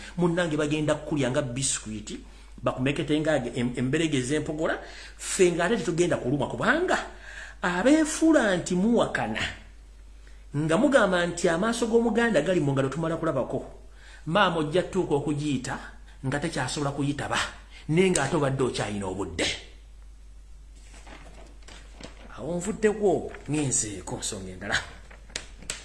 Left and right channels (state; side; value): identical; both; correlation 1.00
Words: Munnange bagenda kukulya nga biskwiti bakumekete nga emberege ez'empogola ffe ng'ate tetugenda kuluma kubanga abeefuula nti muwakana nga mugamba nti amaaso g'Omuganda gali mu ngalo tumala kulabako. Maama ojja tuuka okugiyita nga tekyasobola kuyitaba naye ng'ate obadde okyalina obudde. Awo nvuddeko ngenzeeko nsonga endala.